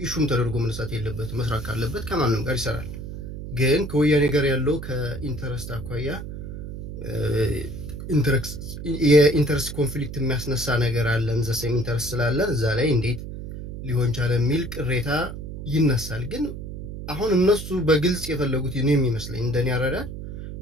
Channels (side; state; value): right; noise; hum, 9 dB below the sound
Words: ተደርጎ መነሳት የለበትም። መስራት ካለበት ከማንም ጋር ይሰራል። ግን ከወያኔ ጋር ያለው ከኢንተረስት አኳያ የኢንተረስት ኮንፍሊክት የሚያስነሳ ነገር አለን። ዘሴም ኢንተረስት ስላለን እዛ ላይ እንዴት ሊሆን ቻለ የሚል ቅሬታ ይነሳል። ግን አሁን እነሱ በግልጽ የፈለጉት እኔ የሚመስለኝ እንደኔ አረዳድ